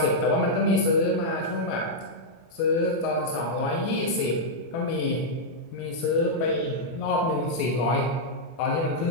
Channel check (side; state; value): right; late; 24 ms